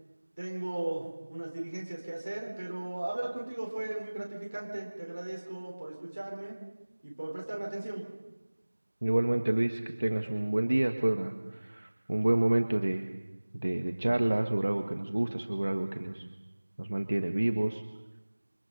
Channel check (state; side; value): inverted; both; correlation -1.00